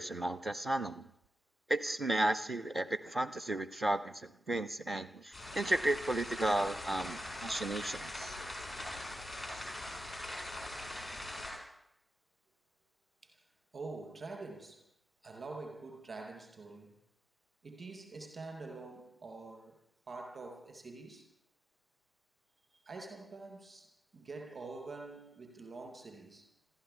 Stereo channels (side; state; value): both; normal; correlation 0.90